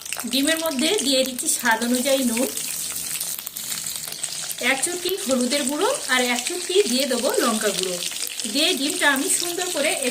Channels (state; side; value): identical; both; correlation 1.00